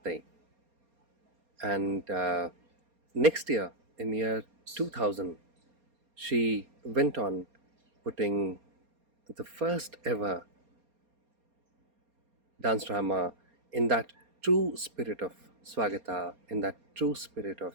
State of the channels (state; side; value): late; left; 4.3 ms